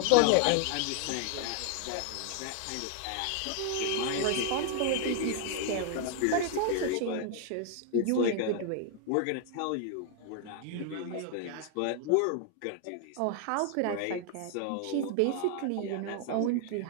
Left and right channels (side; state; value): both; different; correlation 0.00